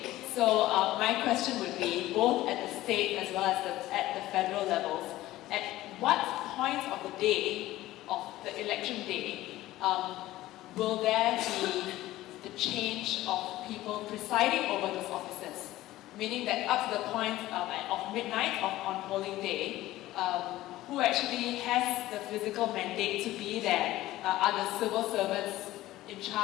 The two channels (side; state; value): right; quieter; 16.0 dB